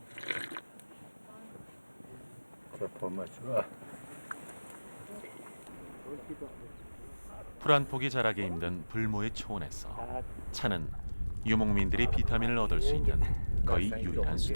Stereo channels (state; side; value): inverted; both; correlation -1.00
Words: 풀 한 폭이 자라기 힘든 불모의 초원에서 차는 유목민들이 비타민을 얻을 수 있는 거의 유일한